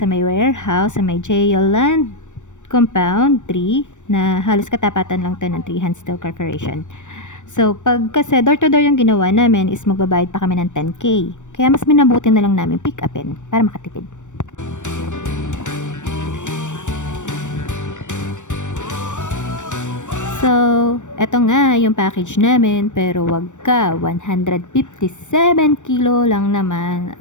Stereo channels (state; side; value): late; right; 0.85 ms